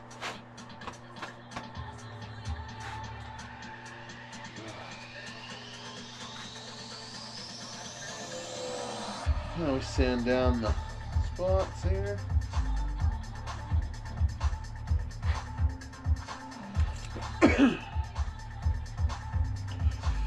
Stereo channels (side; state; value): both; identical; correlation 1.00